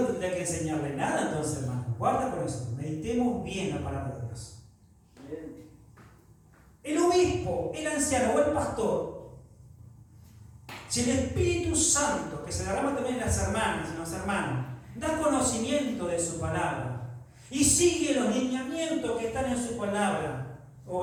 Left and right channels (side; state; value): both; identical; correlation 1.00